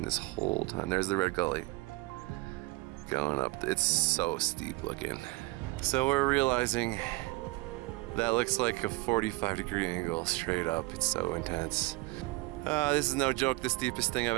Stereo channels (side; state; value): left; quieter; 22.6 dB